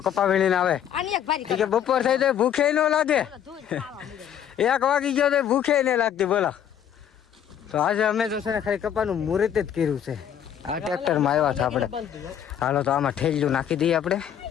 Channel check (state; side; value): quieter; right; 9.5 dB